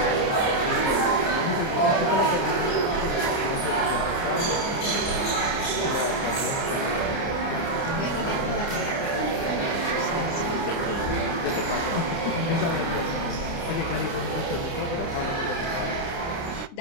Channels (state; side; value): late; right; 29 ms